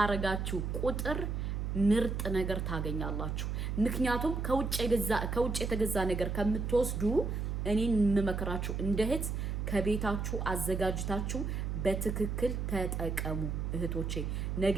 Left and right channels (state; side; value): noise; right; hum, 2 dB below the sound